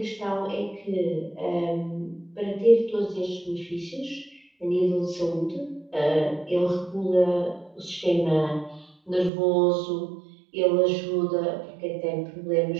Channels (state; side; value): drops out; left; at 9.3 s